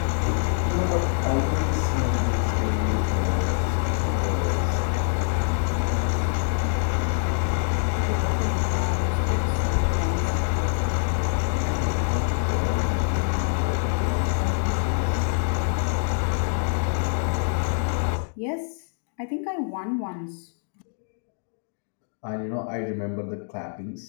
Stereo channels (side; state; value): right; silent; 62 dB below the other